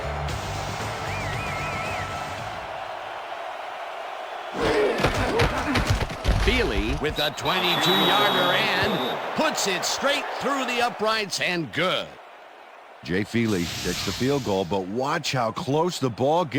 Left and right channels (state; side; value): identical; both; correlation 1.00